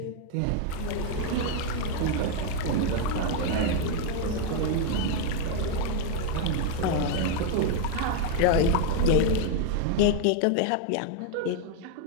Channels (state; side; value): different; both; correlation 0.00